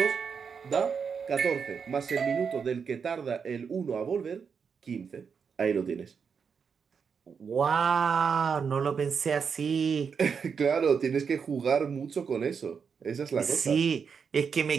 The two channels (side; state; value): left; quieter; 6.2 dB